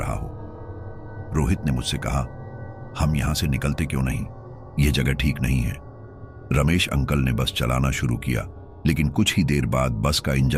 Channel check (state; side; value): identical; both; correlation 1.00